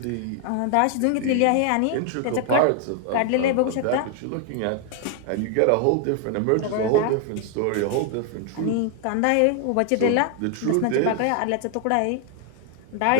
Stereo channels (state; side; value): different; both; correlation 0.00